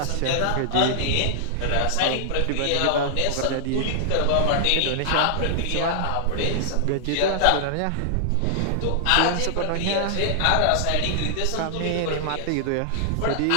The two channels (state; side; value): different; both; correlation -0.01